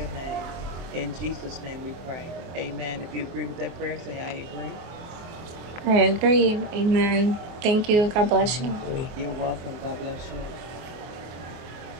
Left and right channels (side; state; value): left; late; 24 ms